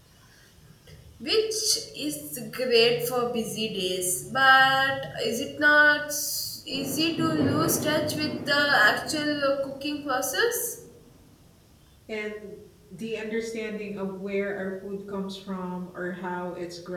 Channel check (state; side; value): identical; both; correlation 1.00